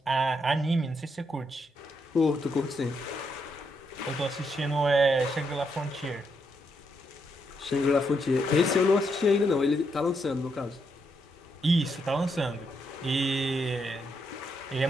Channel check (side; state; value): both; normal; correlation 0.78